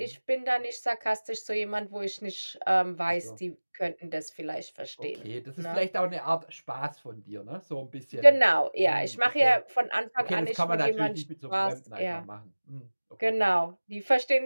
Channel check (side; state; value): both; inverted; correlation -1.00